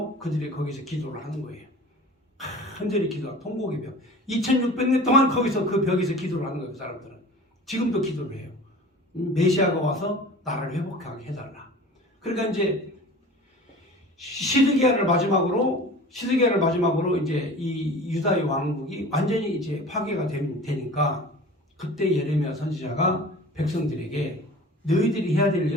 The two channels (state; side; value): normal; both; correlation 0.40